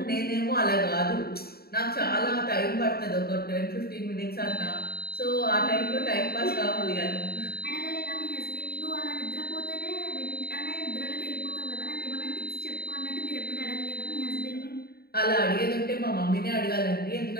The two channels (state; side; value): late; right; 0.45 ms